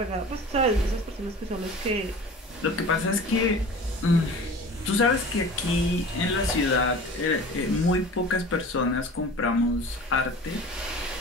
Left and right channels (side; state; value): both; normal; correlation 0.40